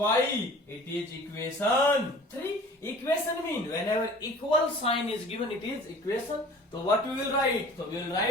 It is equation 3. Equation mean whenever equal sign is given, it is equation. So what we will write? So we will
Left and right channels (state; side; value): normal; both; correlation 0.45